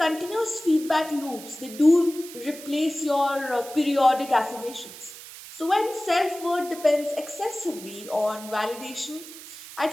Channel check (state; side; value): noise; right; hiss, 15 dB below the sound